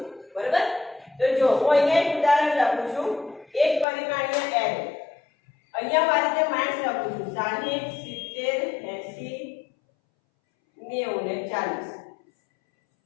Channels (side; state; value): right; drops out; at 3.9 s